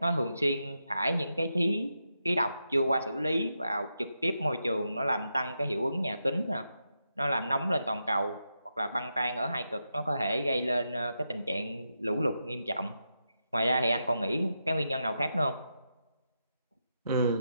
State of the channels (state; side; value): inverted; both; correlation -0.86